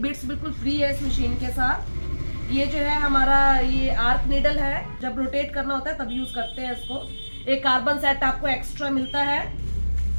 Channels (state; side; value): inverted; both; correlation -1.00